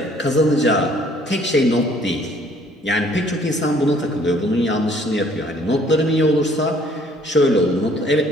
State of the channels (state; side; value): normal; both; correlation 0.59